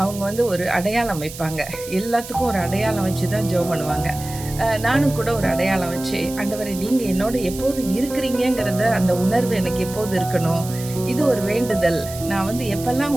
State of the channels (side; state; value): right; noise; hiss, 13 dB below the sound